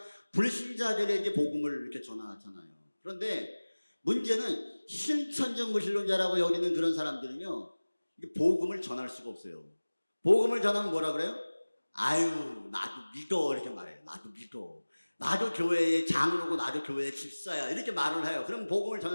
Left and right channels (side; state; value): both; inverted; correlation -1.00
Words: 불신자들에게 복음을 이렇게 전하잖아요. 그런데 문제는 실천적 무신론자라고 여기는 그런 사람들은요, 복음을 전할 수가 없어요. 복음을 전하면 뭐라 그래요? 아유, 나도 믿어, 이렇게 말해요. 나도 믿어, 나도 교회의 장로고 나도 교회의 집사야, 이렇게 말을 해요. 그럼 복음을